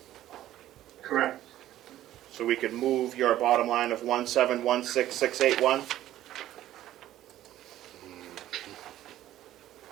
Correct. So we could move your bottom line of 1716681.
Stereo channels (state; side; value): quieter; left; 13.4 dB